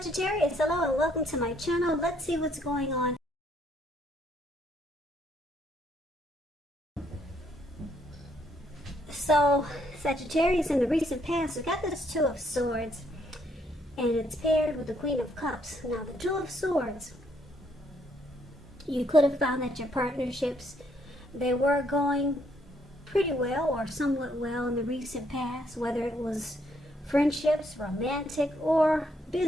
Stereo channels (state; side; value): normal; both; correlation 0.71